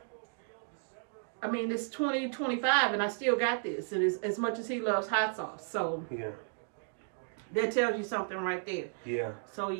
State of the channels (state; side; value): silent; left; 55 dB below the other